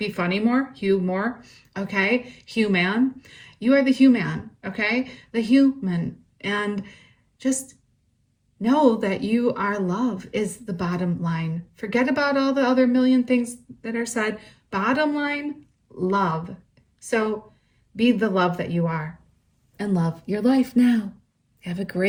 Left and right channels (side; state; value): both; identical; correlation 1.00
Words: funny more, humor, okay? Human. You are the human, okay? The human. And just know that you are love is the bottom line. Forget about all the other million things that are said. Bottom line, love. So be the love that you are and love your life now. Have a